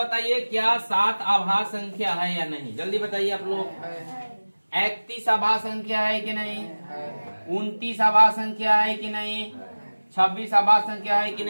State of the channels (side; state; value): both; inverted; correlation -1.00